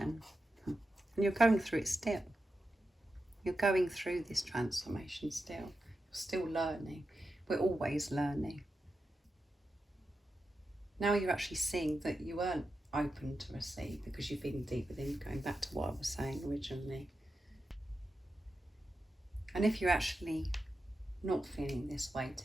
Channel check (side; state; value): both; normal; correlation 0.89